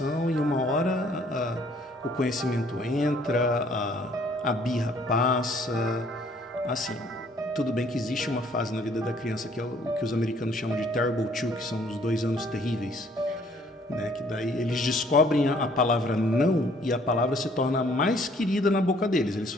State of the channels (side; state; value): both; normal; correlation 0.61